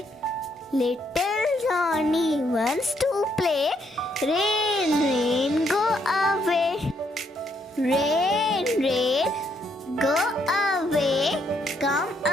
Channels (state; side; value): normal; both; correlation 0.73